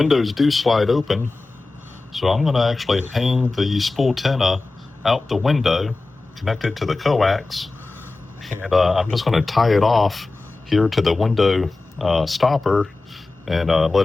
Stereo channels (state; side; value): quieter; right; 3.4 dB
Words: do slide open, so I'm going to actually hang the Spooltenna out the window, connected to the coax, and I'm just going to tie it off here to the window stopper and